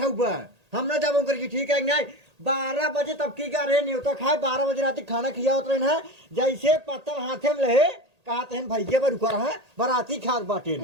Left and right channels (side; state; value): left; late; 1.8 ms